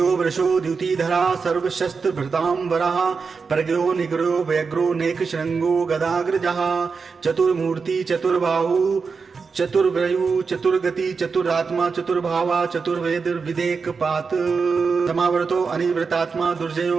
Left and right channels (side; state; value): left; quieter; 5.1 dB